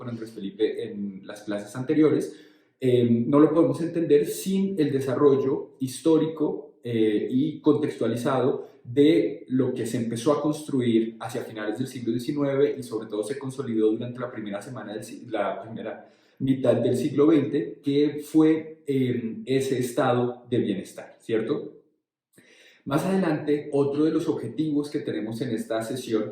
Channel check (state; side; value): identical; both; correlation 1.00